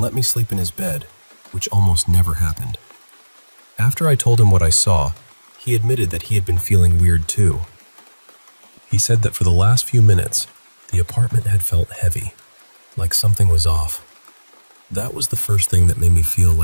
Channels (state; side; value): inverted; both; correlation -1.00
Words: let me sleep in his bed, which almost never happened. After I told him what I saw, he admitted that he had been feeling weird too. He said that for the last few minutes, the apartment had felt heavy, like something was off. That was the first thing that made me feel